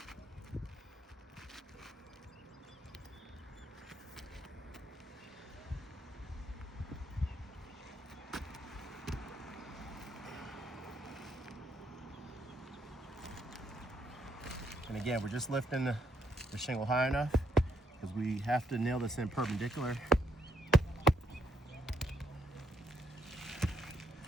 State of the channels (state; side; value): normal; both; correlation 0.75